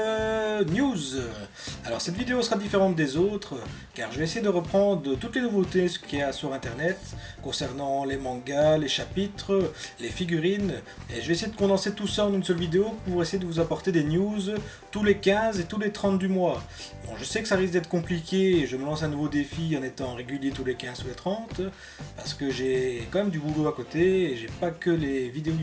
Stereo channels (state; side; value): identical; both; correlation 1.00